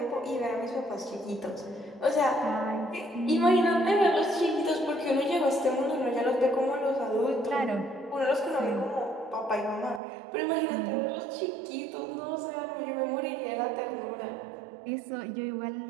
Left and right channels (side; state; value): left; drops out; at 10.0 s